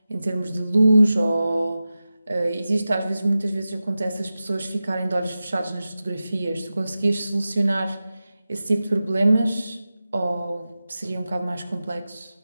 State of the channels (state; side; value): inverted; both; correlation -0.94